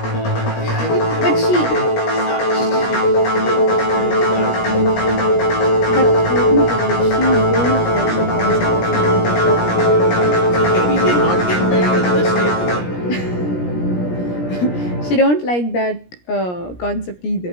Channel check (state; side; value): late; right; 17 ms